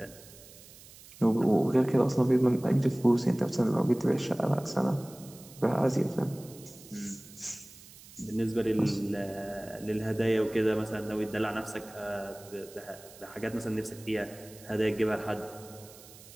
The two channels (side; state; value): right; noise; hiss, 20 dB below the sound